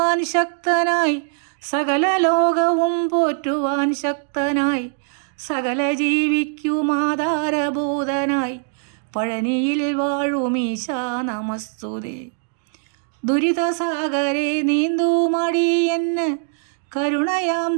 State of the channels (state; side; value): silent; left; digital silence